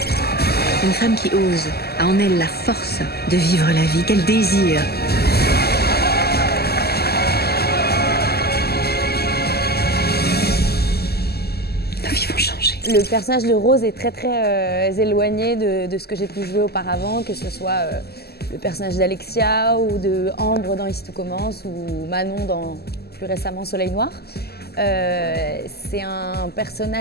Une femme qui ose, a en elle la force de vivre la vie qu'elle désire. Nos vies vont changer. Le personnage de Rose est très éloigné de ce que j'ai pu jouer auparavant, que ce soit le personnage d'Alexia ou de Ambre dans Ici tout commence ou Manon dans plus récemment Soleil Noir. C'est un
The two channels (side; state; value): right; late; 0.46 ms